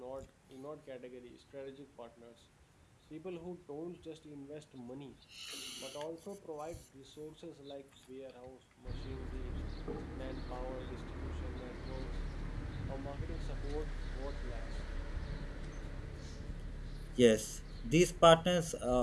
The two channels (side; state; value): both; identical; correlation 1.00